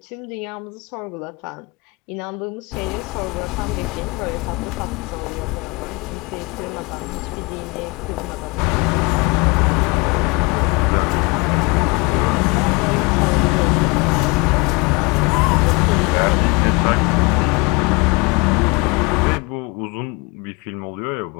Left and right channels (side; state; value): right; quieter; 27.7 dB